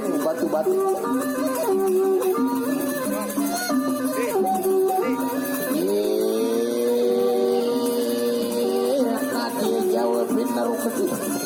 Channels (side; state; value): both; identical; correlation 1.00